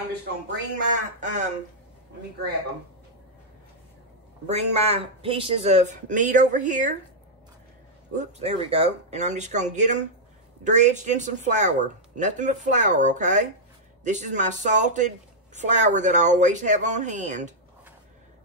just going to bring my, let me grab them. Bring my pieces of meat over here. Whoops, there we go. And I'm just going to get them dredged in some flour. Nothing but flour, okay? This is my salted flour that I always have on hand.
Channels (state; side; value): normal; both; correlation -0.06